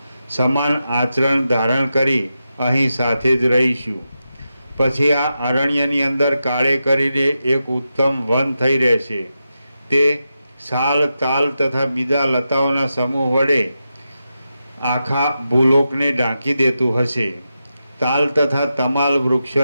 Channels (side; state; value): both; inverted; correlation -0.89